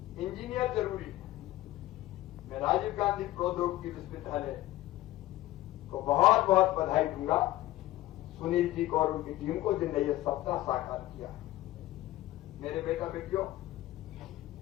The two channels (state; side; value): quieter; right; 16.0 dB